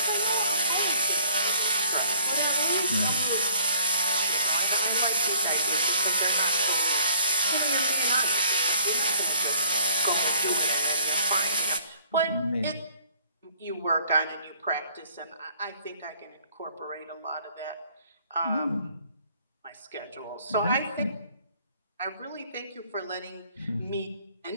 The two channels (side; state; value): both; inverted; correlation -0.56